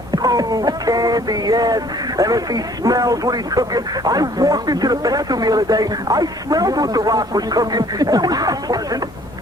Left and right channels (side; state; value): both; normal; correlation 0.57